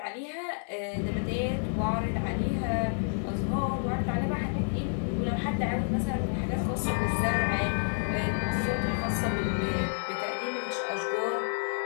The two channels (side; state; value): right; silent; digital silence